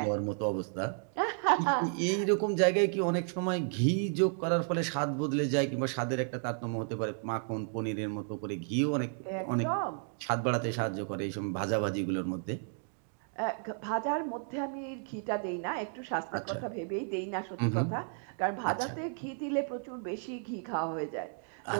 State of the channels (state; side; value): silent; left; 56 dB below the other